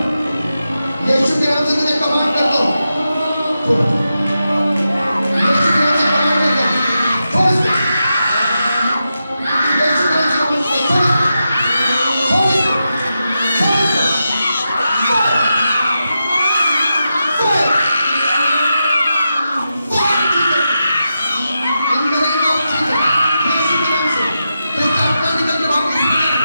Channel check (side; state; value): both; inverted; correlation -0.88